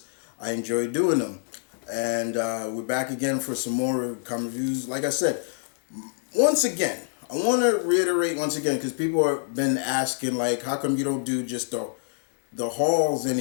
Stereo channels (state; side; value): silent; right; digital silence